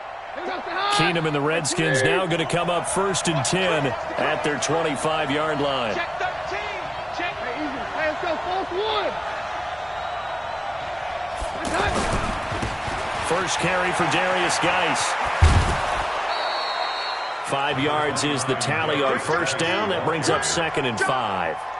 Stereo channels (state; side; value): identical; both; correlation 1.00